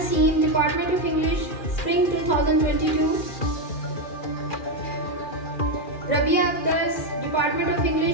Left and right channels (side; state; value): right; late; 2.4 ms